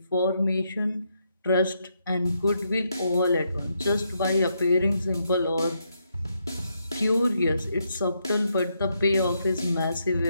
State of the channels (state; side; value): inverted; both; correlation -0.79